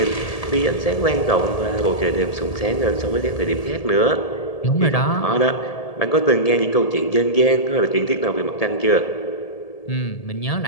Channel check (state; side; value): late; right; 1.8 ms